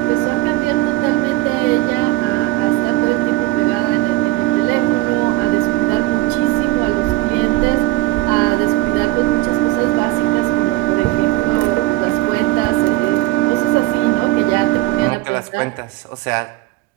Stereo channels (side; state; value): left; quieter; 18.6 dB